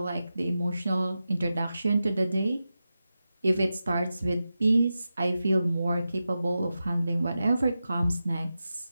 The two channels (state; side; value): inverted; both; correlation -0.92